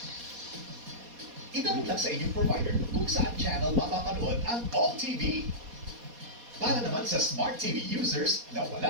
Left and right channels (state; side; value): late; left; 4.2 ms